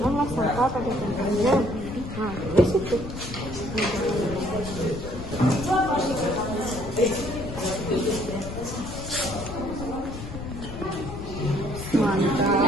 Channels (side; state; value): left; noise; rumble, 9 dB below the sound